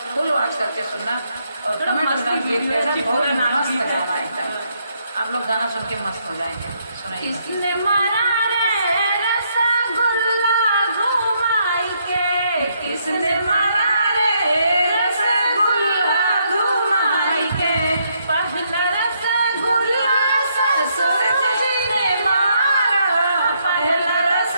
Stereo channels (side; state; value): both; inverted; correlation -0.74